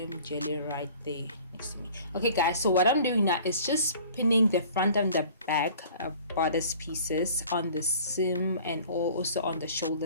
jelly right there next to me. Okay, guys, so what I'm doing now is just pinning the front and the back bodice pieces on the seam and also on the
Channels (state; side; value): inverted; both; correlation -0.48